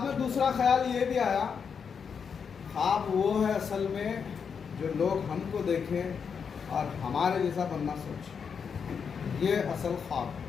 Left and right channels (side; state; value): right; quieter; 6.4 dB